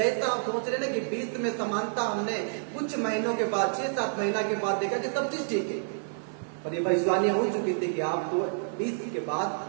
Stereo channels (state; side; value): silent; left; 59 dB below the other